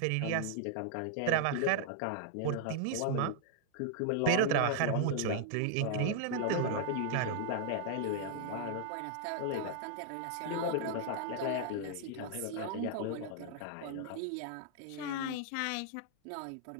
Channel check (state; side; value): different; both; correlation -0.01